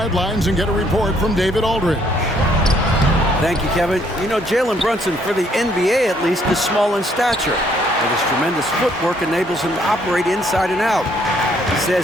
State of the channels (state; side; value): normal; both; correlation 0.67